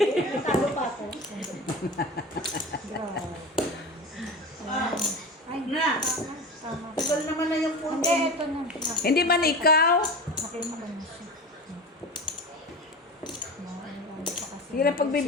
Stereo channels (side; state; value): both; normal; correlation 0.30